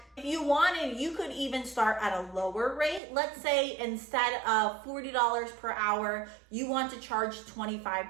if you wanted, you could even start at a lower rate. Let's say instead of $40 per hour, you want to charge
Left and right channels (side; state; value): left; drops out; at 3.0 s